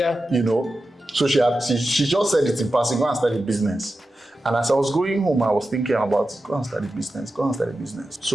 You know? So she just said it in passing, go and start a business. And as I was going home, I was thinking about, go and start a business.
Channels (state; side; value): normal; both; correlation 0.92